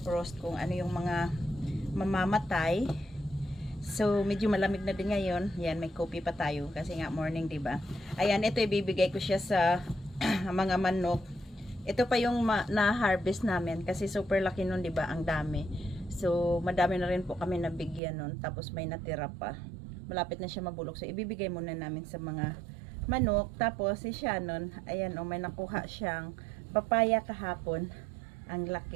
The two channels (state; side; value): drops out; left; at 18.0 s